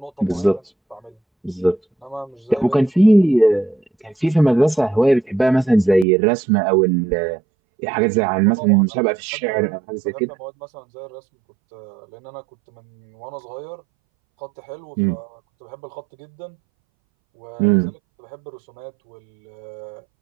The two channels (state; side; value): drops out; left; at 6.1 s